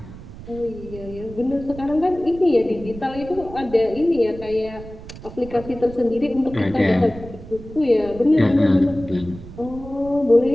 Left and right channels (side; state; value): right; noise; rumble, 15 dB below the sound